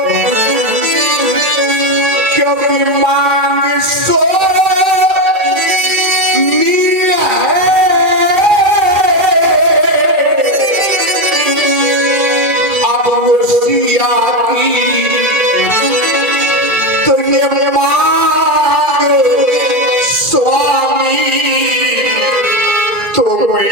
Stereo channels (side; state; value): left; late; 2.4 ms